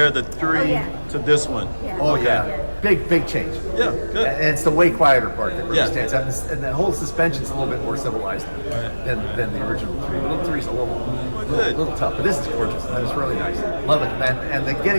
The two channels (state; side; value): inverted; both; correlation -1.00